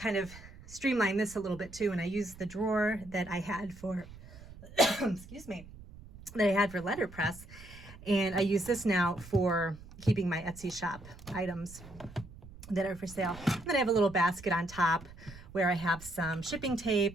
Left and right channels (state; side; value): noise; right; rumble, 17 dB below the sound